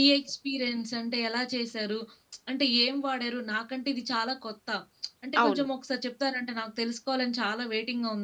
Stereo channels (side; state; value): both; identical; correlation 1.00